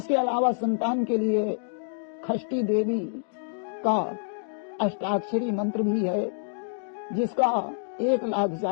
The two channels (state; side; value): silent; right; digital silence